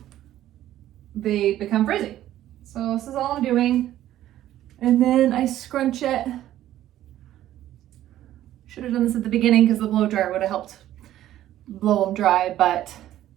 they become frizzy. So this is all I'm doing. And then I scrunch it. Should have done this at the beginning because the blow dryer would have helped blow them dry, but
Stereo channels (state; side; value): quieter; left; 13.1 dB